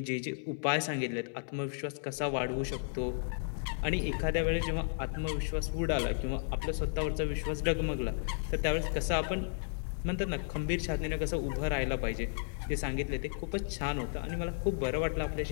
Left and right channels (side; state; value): right; silent; 55 dB below the other